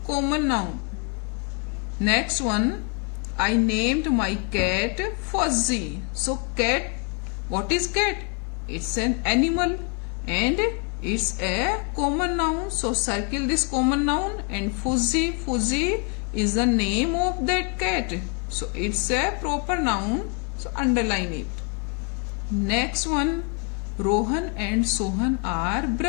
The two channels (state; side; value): quieter; right; 34.3 dB